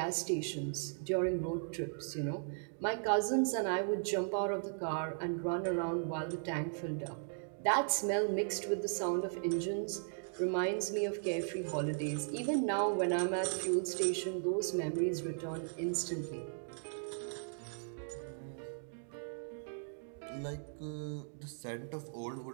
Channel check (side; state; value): left; silent; digital silence